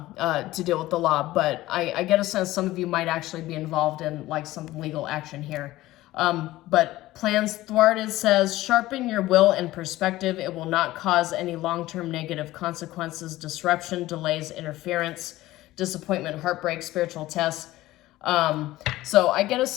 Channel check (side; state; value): right; quieter; 16.7 dB